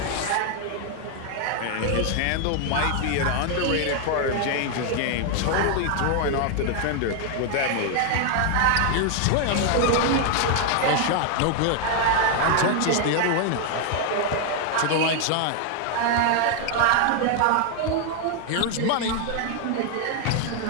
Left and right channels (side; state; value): both; different; correlation 0.01